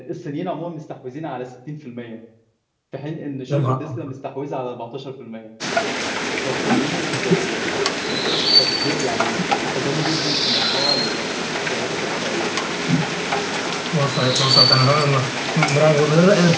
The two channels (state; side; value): identical; both; correlation 1.00